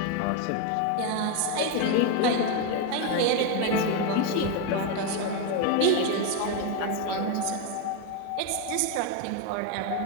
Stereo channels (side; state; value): both; different; correlation 0.02